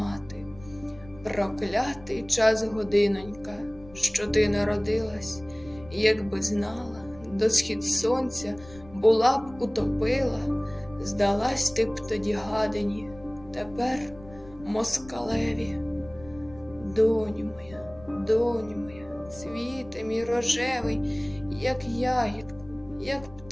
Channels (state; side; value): noise; left; rumble, 20 dB below the sound